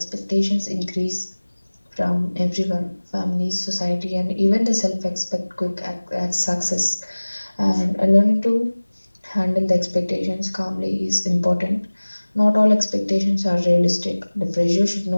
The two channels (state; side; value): inverted; both; correlation -1.00